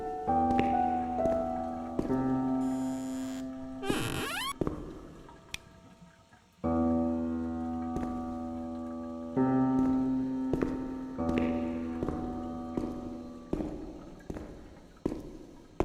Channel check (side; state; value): both; identical; correlation 1.00